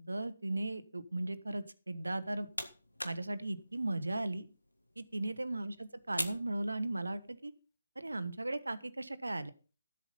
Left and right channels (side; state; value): both; inverted; correlation -0.96